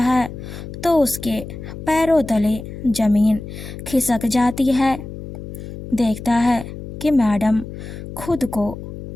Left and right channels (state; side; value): noise; left; hum, 11 dB below the sound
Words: तो उसके पैरों तले ज़मीन खिसक जाती है। देखता है कि मैडम खुद को